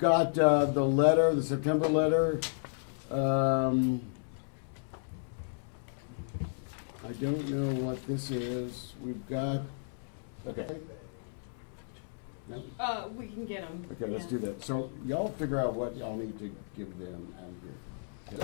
the letter, the September letter. I don't know what this is. We've got. Okay. No? We can get them. Okay, let's do that. So y'all figure out what y'all need to give them out of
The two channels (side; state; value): right; silent; 56 dB below the other